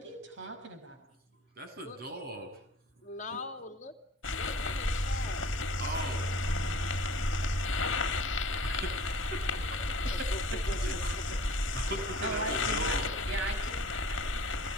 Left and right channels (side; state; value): both; normal; correlation 0.47